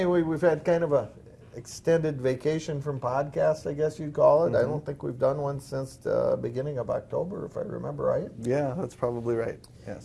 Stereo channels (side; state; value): both; identical; correlation 1.00